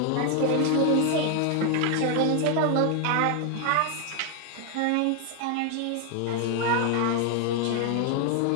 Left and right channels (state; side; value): different; both; correlation 0.01